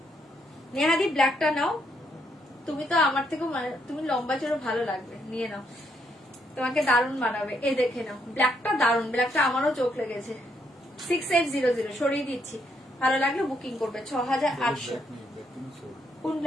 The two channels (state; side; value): normal; both; correlation 0.74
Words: নেহাদি, ব্ল্যাকটা নাও, তুমি তো আমার থেকে তুমি লম্বা চড়ো, ভালো লাগবে, নিয়ে নাও, তোমাকে দারুণ বানাবে, এ দেখে নাও, ব্ল্যাকটা দারুণ, ব্ল্যাকটা আমারও চোখ লেগেছে। 6800 সরিয়ে দিচ্ছি, ভালো লাগলে বুকিং করবে। 6800। কোন